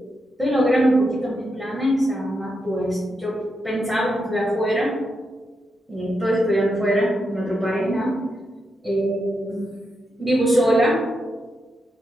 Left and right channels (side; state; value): both; normal; correlation 0.84